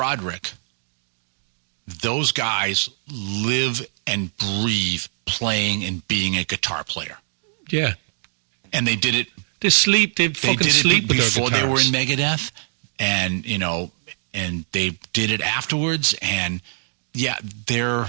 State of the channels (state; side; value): silent; left; digital silence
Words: those guys live and breathe playing and being a guitar player. Yeah. And they did it. They did it before they were in Megadeth, and and they did it afterwards. And yeah, and